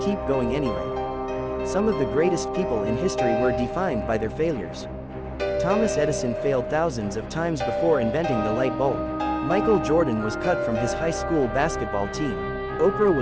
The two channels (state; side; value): identical; both; correlation 1.00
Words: going anyway. Some of the greatest people in history were defined by their failures. Thomas Edison failed thousands of times before inventing the light bulb. Michael Jordan was cut from his high school basketball team. Oprah